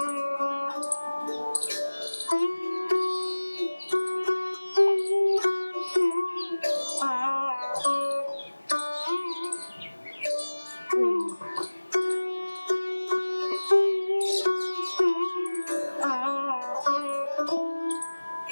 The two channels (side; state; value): both; inverted; correlation -1.00